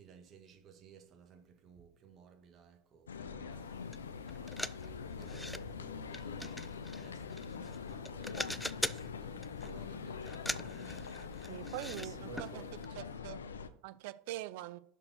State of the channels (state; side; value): normal; both; correlation 0.10